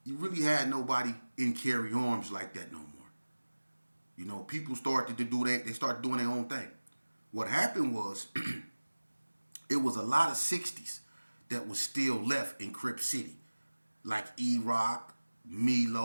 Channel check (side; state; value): both; inverted; correlation -1.00